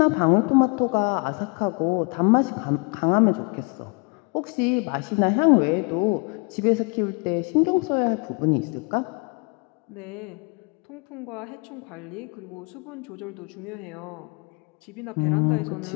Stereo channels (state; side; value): quieter; right; 32.5 dB